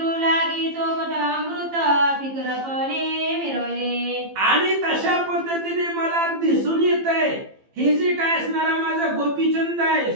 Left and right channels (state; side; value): late; left; 15 ms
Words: लागी चोपट अमृत, फिकरपणे मिरवले. आणि तशा पद्धतीने मला दिसून येतंय हे जे काय असणारा माझा गोपीचंद आहे,